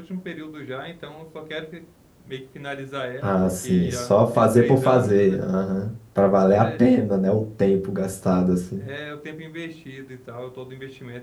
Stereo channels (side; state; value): both; identical; correlation 1.00